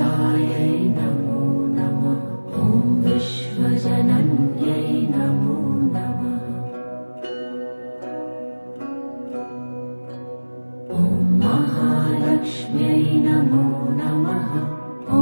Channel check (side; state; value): both; inverted; correlation -1.00